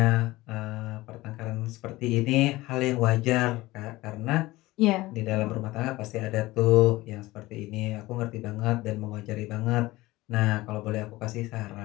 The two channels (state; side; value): quieter; right; 19.1 dB